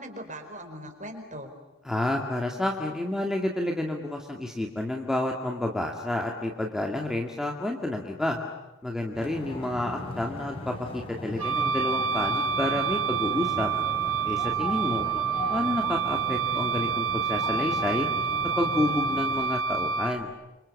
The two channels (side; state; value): both; normal; correlation 0.58